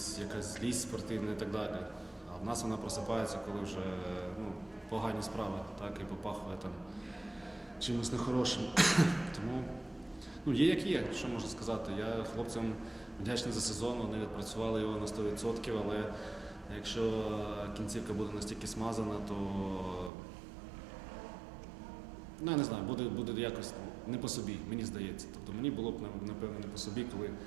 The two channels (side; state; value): left; drops out; at 20.1 s